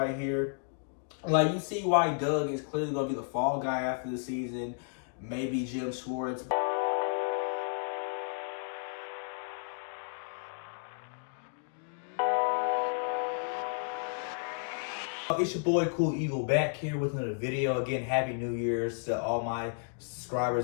here, like you see why Doug is clearly going to be the fall guy after the season. Maybe Jim Schwartz. It's your boy Cool Eagle back here with another video. Again, Happy New Year's to all my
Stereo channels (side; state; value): right; silent; digital silence